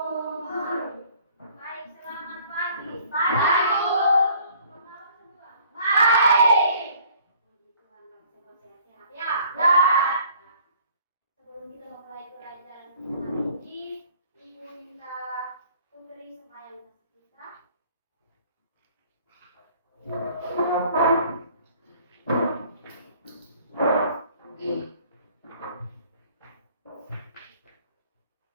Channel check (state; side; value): inverted; both; correlation -0.56